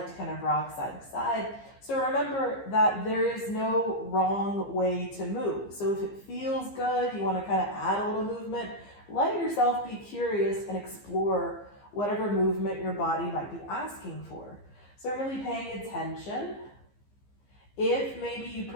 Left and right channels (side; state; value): right; late; 15 ms